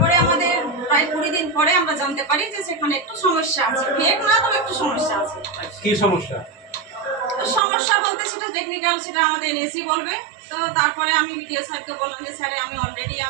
আমাদের প্রায় 20 দিন পরে আমরা জানতে পারি যে সেখানে একটু সমস্যা আছে। ফেক না, তবে একটু সমস্যা আছে। কি সমস্যা? সমস্যা বলতে সেটা টেকনিক্যাল, সেটা আমাদের এনএসই বলবে। তো তারপরে আমি ভিডিও স্যারকে বললাম যে স্যার, আমি অলরেডি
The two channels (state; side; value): drops out; left; at 7.6 s